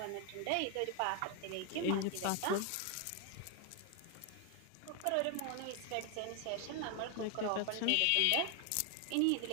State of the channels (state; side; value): different; both; correlation 0.01